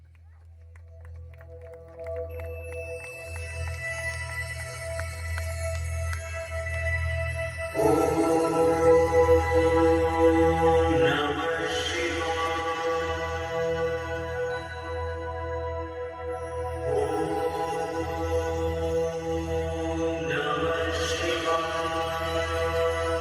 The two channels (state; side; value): identical; both; correlation 1.00